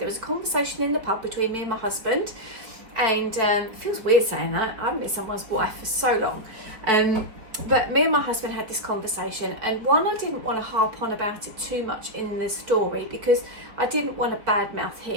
was a conversation in the pub between me and my husband, and it feels weird saying that. I haven't been someone's wife for so long. But me and my husband had this conversation, and one, I didn't want to harp on about it too much in the story because I didn't want to badmouth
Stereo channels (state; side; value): late; left; 4.3 ms